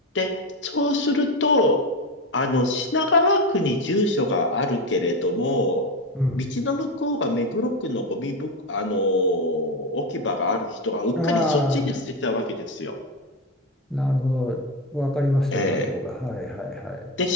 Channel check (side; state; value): both; normal; correlation 0.15